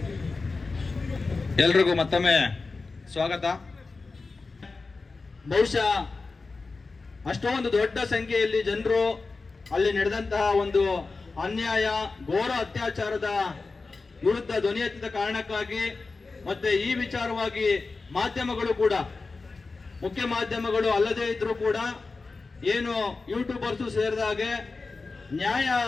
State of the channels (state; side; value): quieter; right; 3.9 dB